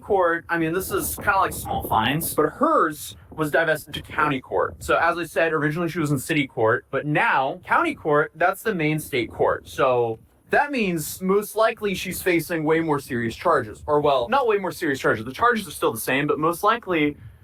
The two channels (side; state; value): both; identical; correlation 1.00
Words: this is kind of like small fines, but hers was divested to county court. So as I said, originally she was in city court, but now county court, that's the main state court. So that means most likely she's facing way more serious charges. Or well, not way more serious charges. The charges are still the same, but most likely